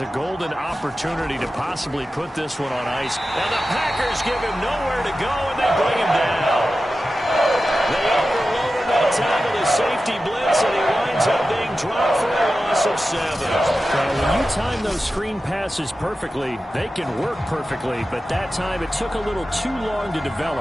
a golden opportunity to possibly put this one on ice. And the Packers give him nowhere to go, and they bring him down. They overloaded that time with a safety blitz, and he winds up being dropped for a loss of 7. Well, when you time those screen passes perfectly, they can work perfectly, but that time it took a little too long to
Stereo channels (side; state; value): both; normal; correlation 0.93